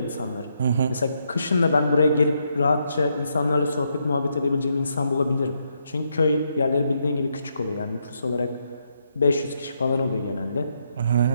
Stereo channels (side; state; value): both; inverted; correlation -0.78